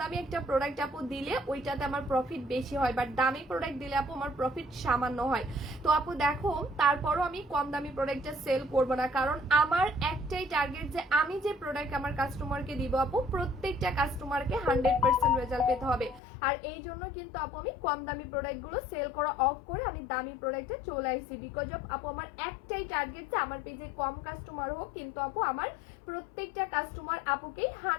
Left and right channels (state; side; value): drops out; right; at 16.2 s